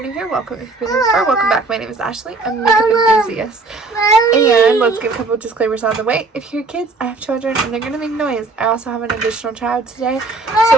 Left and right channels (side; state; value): left; quieter; 3.6 dB